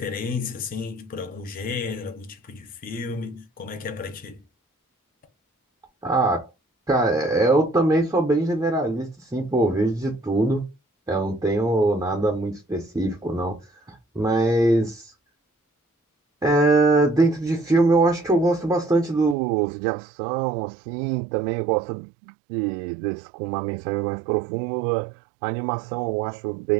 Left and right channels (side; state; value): left; drops out; at 19.4 s